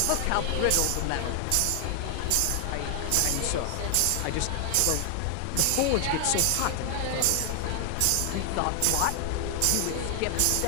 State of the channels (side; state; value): both; different; correlation 0.00